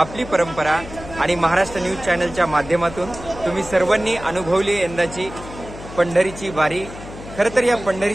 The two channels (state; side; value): noise; left; hum, 14 dB below the sound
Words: आपली परंपरा आणि महाराष्ट्र न्यूज चॅनलच्या माध्यमातून तुम्ही सर्वांनी अनुभवली यंदाची पंढरीची वारी। खरं तर या